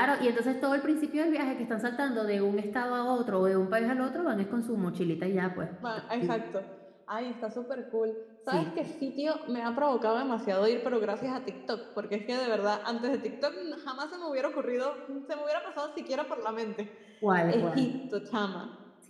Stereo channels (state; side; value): identical; both; correlation 1.00